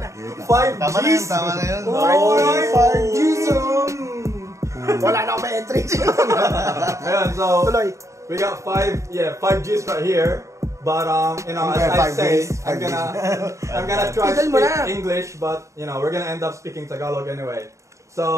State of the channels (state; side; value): late; left; 0.15 ms